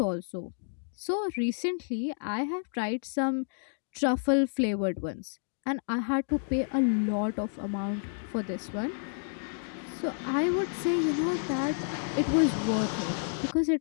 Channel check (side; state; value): right; silent; digital silence